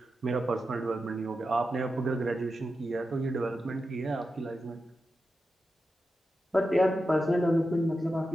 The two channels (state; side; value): normal; both; correlation 0.90